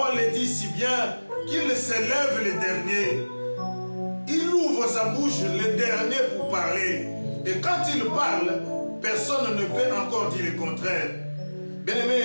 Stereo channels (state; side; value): inverted; both; correlation -1.00